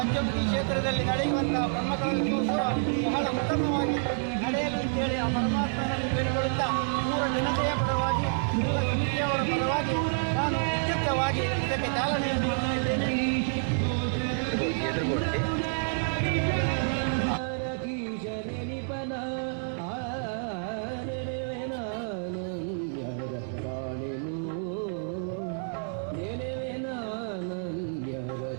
ಕ್ಷೇತ್ರದಲ್ಲಿ ನಡೆಯುವಂತಹ ಬ್ರಹ್ಮಕಲಶೋತ್ಸವ ಬಹಳ ಉತ್ತಮವಾಗಿ ನಡೆಯಲಿ ಅಂತೇಳಿ ಆ ಪರಮಾತ್ಮನನ್ನು ಬೇಡಿಕೊಳ್ಳುತ್ತಾ ಪೂರ ಜನತೆಯ ಪರವಾಗಿ ಎಲ್ಲ ಸಮಿತಿಯವರ ಪರವಾಗಿ ನಾನು ವಿದ್ಯುಕ್ತವಾಗಿ ಇದಕ್ಕೆ ಚಾಲನೆಯನ್ನು ನೀಡ್ತಾ ಇದ್ದೇನೆ.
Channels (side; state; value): left; silent; digital silence